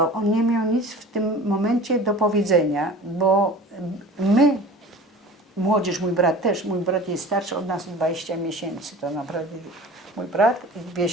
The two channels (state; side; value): normal; both; correlation 0.40